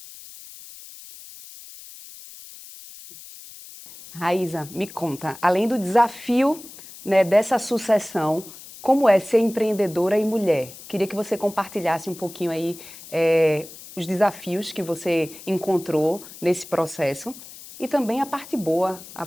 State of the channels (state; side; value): noise; left; hiss, 17 dB below the sound